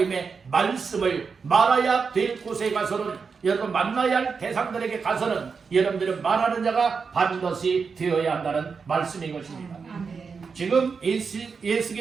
말씀을 말해야 될 곳에 가서는 여러분 만나야 할 대상들에게 가서는 여러분들은 말하는 자가 반드시 되어야 한다는 말씀인 것입니다. 지금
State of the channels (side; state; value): left; quieter; 5.4 dB